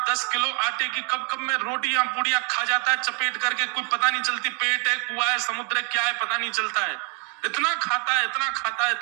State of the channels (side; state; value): left; quieter; 35.8 dB